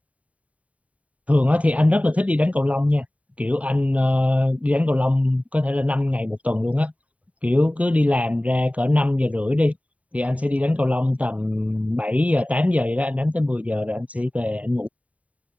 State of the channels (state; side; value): late; left; 0.068 ms